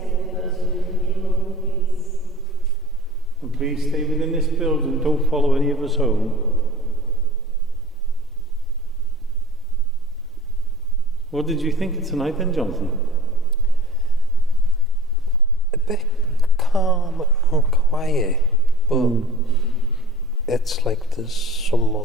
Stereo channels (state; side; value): normal; both; correlation 0.43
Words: with us in love and peace. And please stay within this building, don't follow any of us home. What did you think of tonight then, Jonathan? A bit calm and quiet, but it's like there's